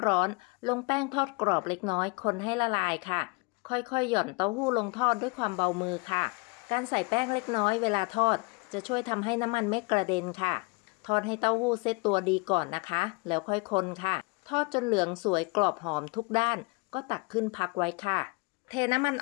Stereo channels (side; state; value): right; quieter; 29.5 dB